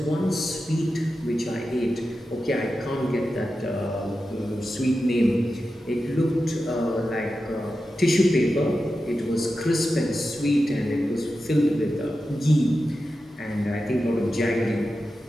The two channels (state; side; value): normal; both; correlation 0.91